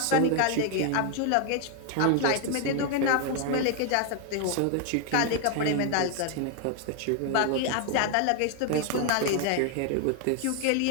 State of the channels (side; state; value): both; different; correlation 0.00